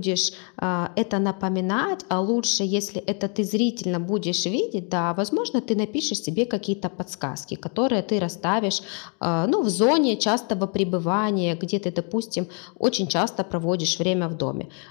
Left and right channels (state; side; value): quieter; right; 39.9 dB